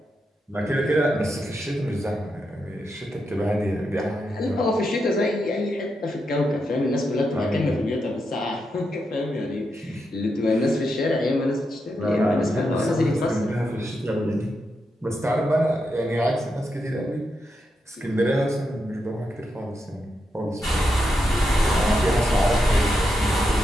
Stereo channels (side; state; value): both; normal; correlation 0.84